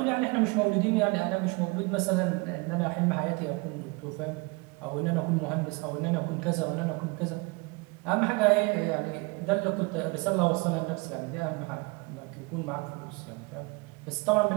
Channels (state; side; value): quieter; left; 27.6 dB